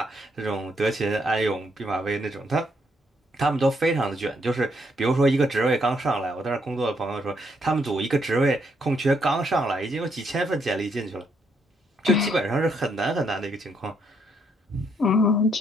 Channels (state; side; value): normal; both; correlation 0.74